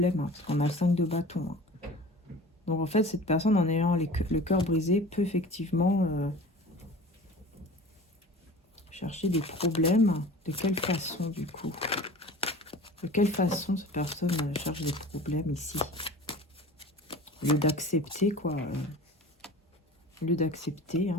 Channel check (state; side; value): normal; both; correlation 0.40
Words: Hein, parce qu'on a le 5 de bâton. Hein. Donc en fait cette personne en ayant le cœur brisé peut effectivement... chercher des problèmes. De quelle façon, du coup? De quelle façon cette personne cherche des problèmes ici? Au lieu d'accepter, quoi. Au lieu d'accepter.